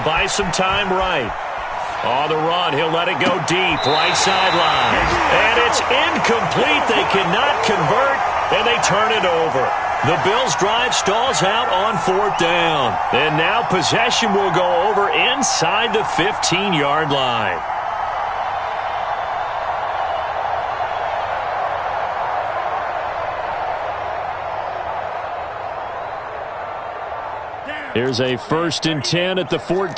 buy some time right. On the run, he'll let it go deep, right sideline. And it's incomplete. They cannot convert, and they turn it over. The Bills' drive stalls out on 4th down. And now possession will go over inside the 15-yard line. Here's a 1st and 10 at the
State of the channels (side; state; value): both; identical; correlation 1.00